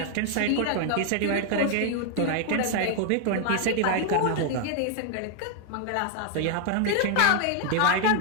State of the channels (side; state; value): both; different; correlation 0.00